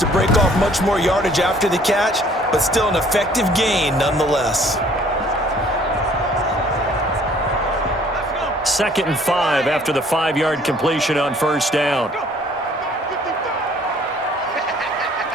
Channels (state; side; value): normal; both; correlation 0.57